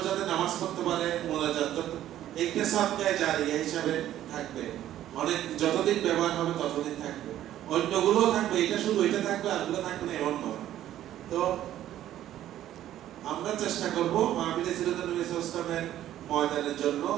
যাতে নামাজ পড়তে পারে, মোনাজাত একটা সাদকায়ে জারিয়া হিসাবে থাকবে। অনেক যতদিন ব্যবহার হবে ততদিন থাকবে, অন্যগুলো থাকবে। এটা শুধু এটা থাকবে আর গুলো থাকবে না এমন নয়। তো আমরা চেষ্টা করব মাহফিল সিরাতুল ইসলামের ময়দানের জন্য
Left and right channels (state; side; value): quieter; left; 12.5 dB